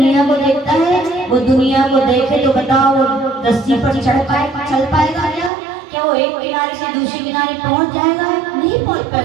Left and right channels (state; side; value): drops out; left; at 5.5 s